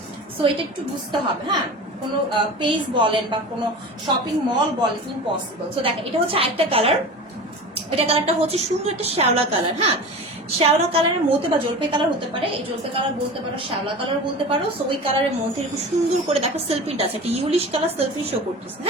সো এটা একটু বুঝতে হবে। হ্যাঁ, কোনো পেজ বলেন বা কোনো শপিং মল বলেন, ইম্পসিবল। সো দেখেন, এটা হচ্ছে আরেকটা কালার। এটা কালারটা হচ্ছে সুন্দর একটা শ্যাওলা কালার। হ্যাঁ, শ্যাওলা কালারের মধ্যে বা জলপাই কালার হতে পারে, এই জলপাই কালার বলতে পারো, শ্যাওলা কালার বলতে পারো। সো ওই কালারের মধ্যে খুব সুন্দর করে দেখো সেলফিনটা আছে, একটা ইউলিশ কালার সেলফিন শো করতেছে।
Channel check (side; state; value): both; normal; correlation 0.33